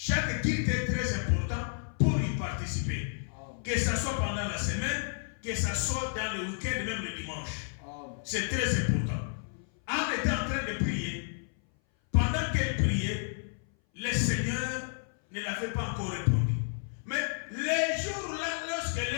est très important pour y participer. Que ce soit pendant la semaine, que ce soit dans le week-end, même le dimanche. C'est très important. Anne était en train de prier. Pendant qu'elle priait, le Seigneur ne l'avait pas encore répondu. Mais les jours-là, lorsqu'elle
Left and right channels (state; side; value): silent; right; 57 dB below the other